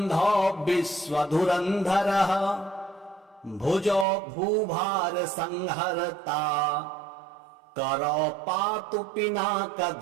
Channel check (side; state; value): left; drops out; at 4.0 s